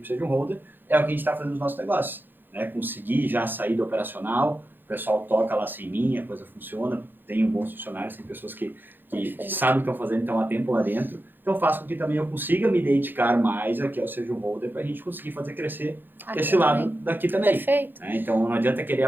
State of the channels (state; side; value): late; left; 0.095 ms